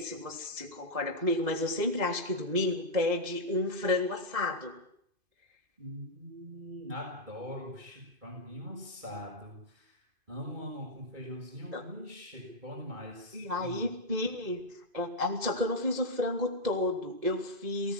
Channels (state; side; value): late; left; 2.5 ms